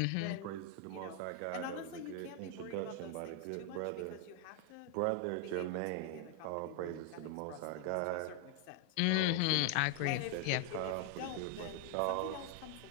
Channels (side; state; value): both; different; correlation 0.01